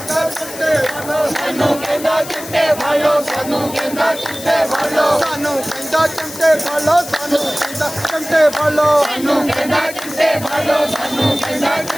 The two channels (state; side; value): noise; left; hiss, 13 dB below the sound